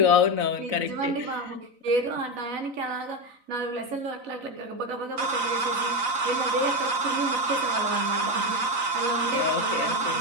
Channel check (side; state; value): left; late; 4.0 ms